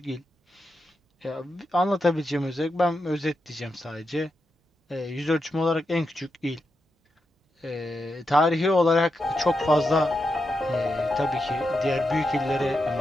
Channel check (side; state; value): both; normal; correlation 0.86